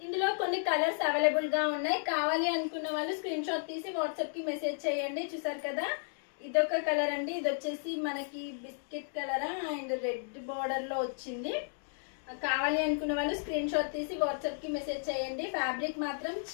ఇందులో కొన్ని కలర్స్ అవైలబుల్ గా ఉన్నాయి. కావాలి అనుకున్న వాళ్ళు స్క్రీన్ షాట్ తీసి వాట్సాప్ కి మెసేజ్ చేయండి. చూసారు కదా, ఇదొక కలర్ అండి. ఇది వచ్చేసి మనకి biscuit colour and red border లో వచ్చింది. కావాలి అనుకున్న వాళ్ళు స్క్రీన్ షాట్ తీసి వాట్సాప్ కి మెసేజ్ చేయండి. ఫ్యాబ్రిక్ మాత్రం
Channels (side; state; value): right; silent; digital silence